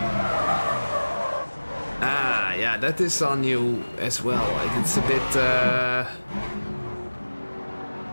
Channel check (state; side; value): inverted; both; correlation -1.00